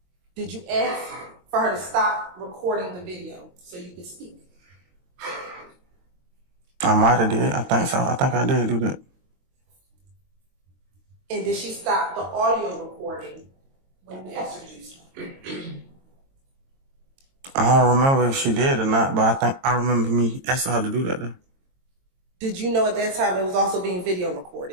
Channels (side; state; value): left; late; 22 ms